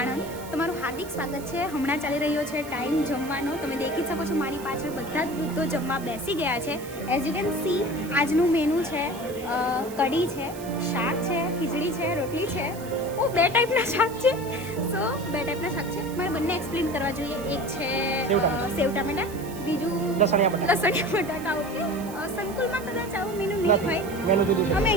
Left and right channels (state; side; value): noise; right; hiss, 17 dB below the sound